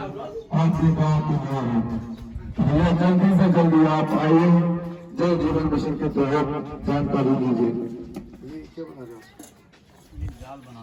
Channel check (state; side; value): identical; both; correlation 1.00